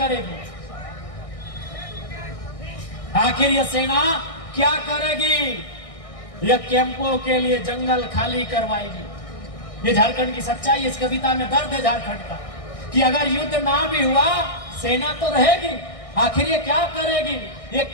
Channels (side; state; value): right; late; 1.6 ms